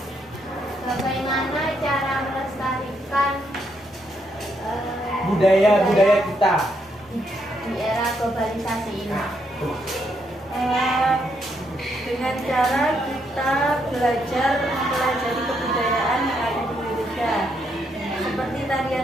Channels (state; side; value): normal; both; correlation 0.76